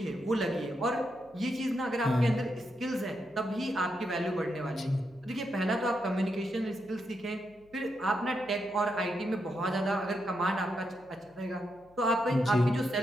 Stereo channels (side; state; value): left; noise; hum, 30 dB below the sound